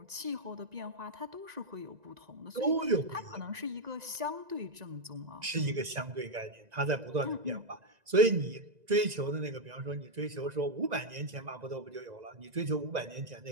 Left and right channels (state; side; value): late; left; 2.0 ms